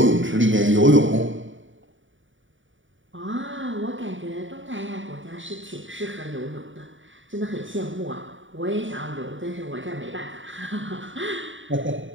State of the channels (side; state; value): left; late; 0.56 ms